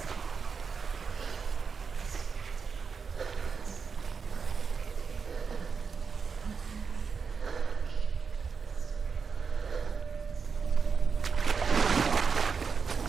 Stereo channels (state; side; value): quieter; left; 5.6 dB